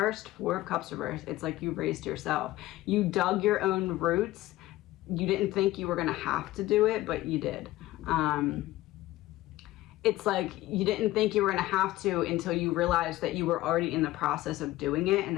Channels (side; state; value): right; quieter; 16.7 dB